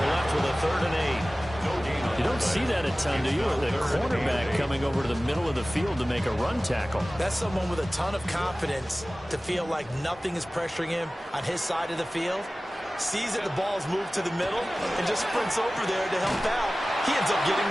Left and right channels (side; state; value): both; normal; correlation 0.97